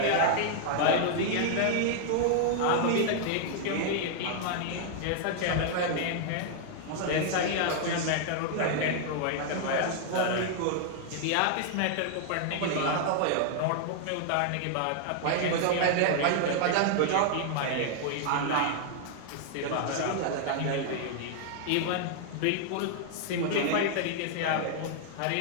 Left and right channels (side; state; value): both; different; correlation 0.00